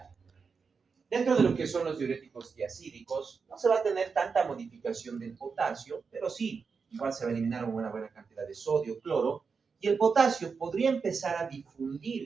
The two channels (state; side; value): quieter; left; 5.3 dB